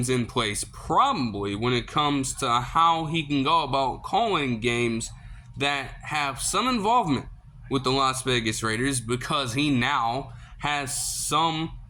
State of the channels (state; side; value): identical; both; correlation 1.00